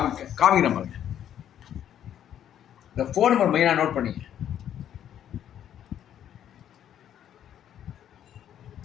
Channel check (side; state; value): right; quieter; 10.2 dB